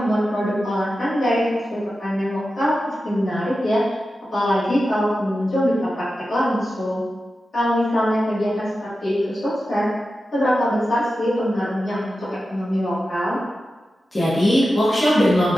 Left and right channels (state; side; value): normal; both; correlation 0.92